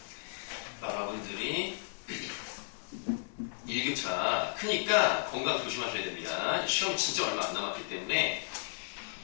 여러분들이 일교차 크니까 건강 조심하셔야 됩니다. 시험이 진짜 얼마 안 남았기 때문에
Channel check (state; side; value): silent; right; digital silence